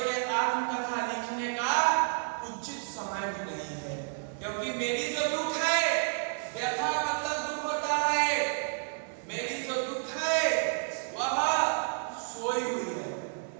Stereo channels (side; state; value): left; silent; digital silence